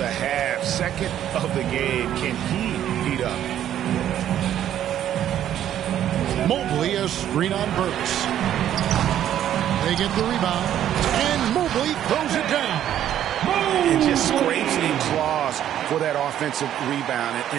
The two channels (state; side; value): quieter; left; 11.0 dB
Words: half, second of the game. Can he heat up? Mobley a screen on Burks. They get the rebound, and Mobley throws it down. And just scrapes and claws for that offensive rebound